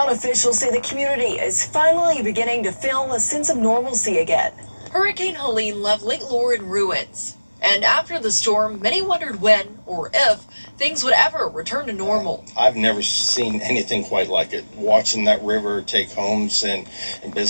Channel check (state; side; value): inverted; both; correlation -1.00